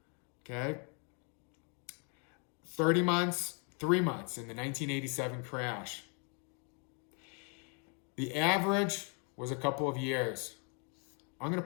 Okay? 30 months, 3 months in the 1987 crash. The average was a couple of years. I'm going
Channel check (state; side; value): quieter; right; 38.2 dB